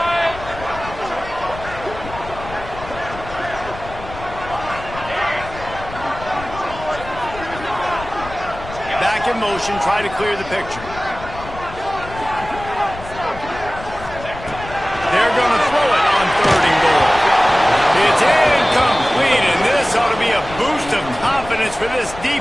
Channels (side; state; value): left; noise; rumble, 13 dB below the sound